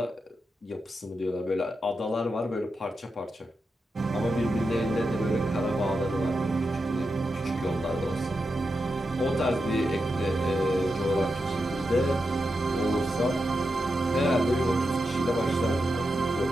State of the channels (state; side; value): normal; both; correlation 0.88